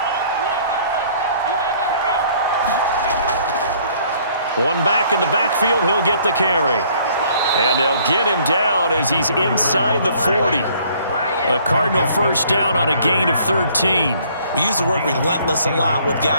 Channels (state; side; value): inverted; both; correlation -0.59